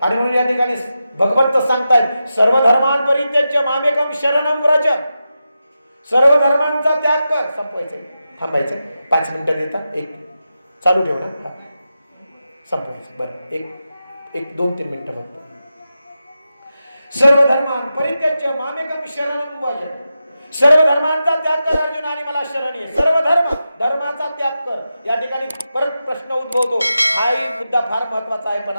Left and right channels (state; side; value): inverted; both; correlation -0.90